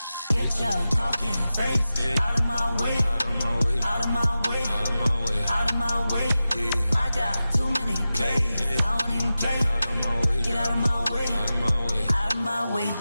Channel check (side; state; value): both; inverted; correlation -0.94